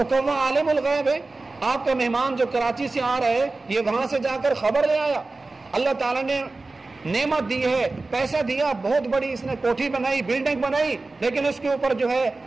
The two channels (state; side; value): quieter; left; 3.4 dB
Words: کووا عالم الغیب ہے، آپ کا مہمان جو کراچی سے آ رہا ہے یہ وہاں سے جا کر خبر لے آیا۔ اللہ تعالیٰ نے نعمت دی ہے، پیسہ دیا، بہت بڑی اس نے کوٹھی بنائی، بلڈنگ بنائی، لیکن اس کے اوپر جو ہے